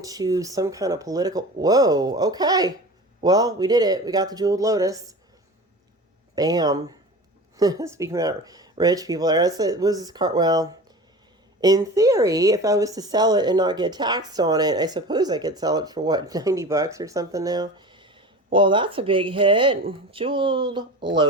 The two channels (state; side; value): normal; both; correlation 0.34